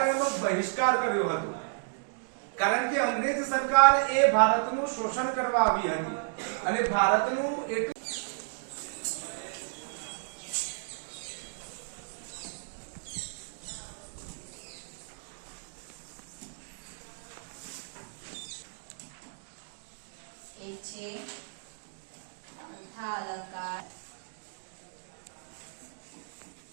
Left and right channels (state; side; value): silent; left; digital silence